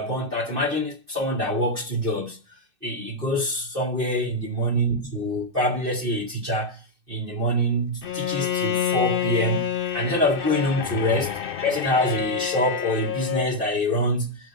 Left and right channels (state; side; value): late; left; 2.6 ms